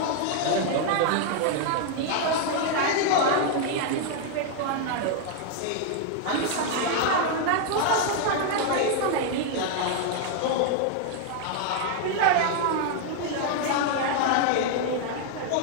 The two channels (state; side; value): different; both; correlation 0.00